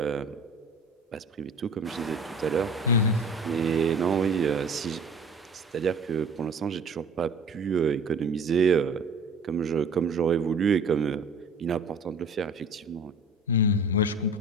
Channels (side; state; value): left; quieter; 3.0 dB